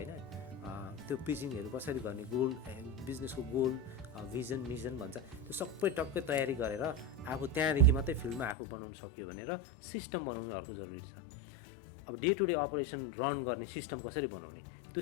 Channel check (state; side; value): drops out; right; at 8.6 s